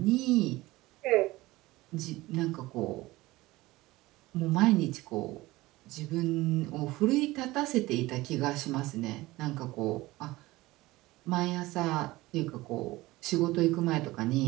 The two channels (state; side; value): quieter; left; 19.2 dB